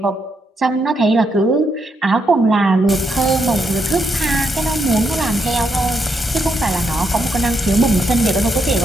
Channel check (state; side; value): normal; both; correlation 0.79